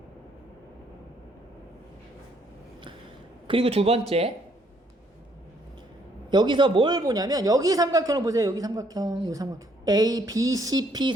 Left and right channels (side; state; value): both; normal; correlation 0.68